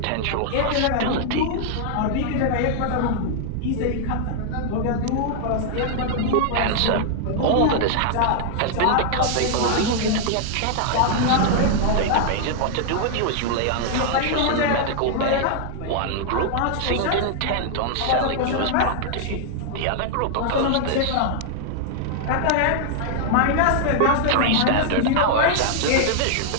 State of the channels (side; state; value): both; different; correlation -0.01